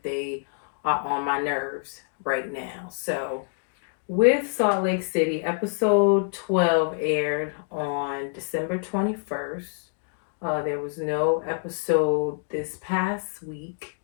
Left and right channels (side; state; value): right; silent; digital silence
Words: they are on my nerves right now. So, with Salt Lake City, episode 12 aired on December 21st. There was no episode this past week